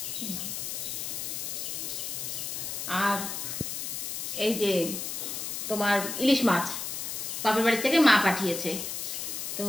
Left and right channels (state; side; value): noise; left; hiss, 4 dB below the sound